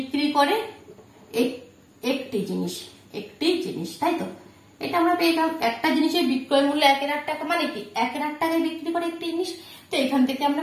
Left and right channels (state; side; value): identical; both; correlation 1.00